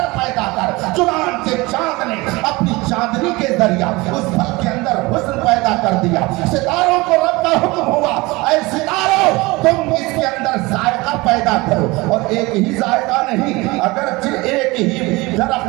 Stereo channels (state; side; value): quieter; left; 22.8 dB